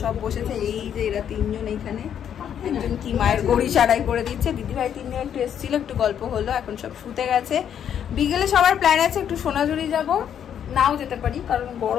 সব বসেছে। এই যে এরা তিনজন এইখানে, একজন কি মায়ের গড়ি সারাই করে দিচ্ছে, দিদিভাই তিনজন একটু এসেছিল, একটু গল্প হলো, এখন সব শুতে গেছে। বিকেলে সবার প্ল্যান আছে একটু সোনাঝুরি যাব, নাও যেতে পারি কারণ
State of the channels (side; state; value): right; quieter; 9.0 dB